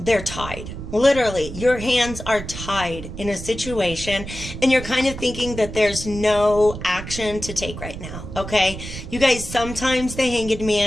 tied. Literally, your hands are tied in a situation, and you're kind of thinking that there's no action to take right now, okay? You guys, sometimes the Hanged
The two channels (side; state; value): right; noise; rumble, 10 dB below the sound